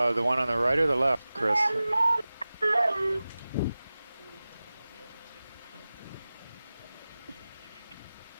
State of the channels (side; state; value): both; inverted; correlation -0.96